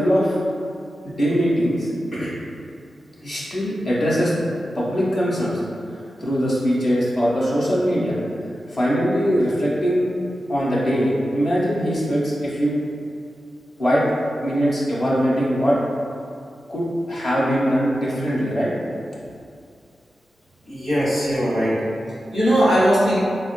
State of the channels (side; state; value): both; normal; correlation 0.91